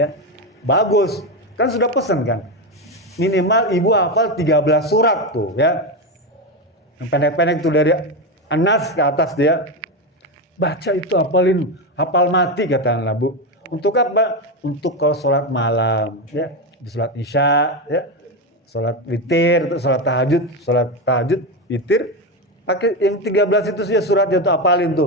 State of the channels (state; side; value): normal; both; correlation 0.13